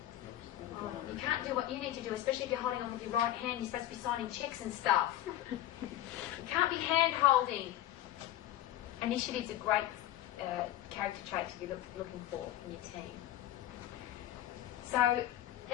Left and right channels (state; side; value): quieter; right; 13.5 dB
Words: You can't do what you need to do, especially if you're holding on with your right hand. You're supposed to be signing checks and stuff. You can't be hand holding. Initiative's a great character trait to be looking for in your team. So